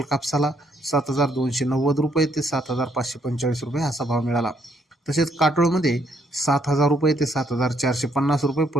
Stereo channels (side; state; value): both; normal; correlation 0.71